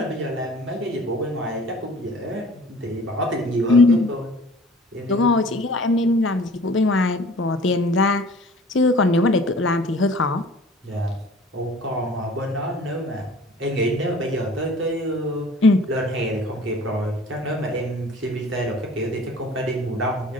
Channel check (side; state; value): both; normal; correlation 0.48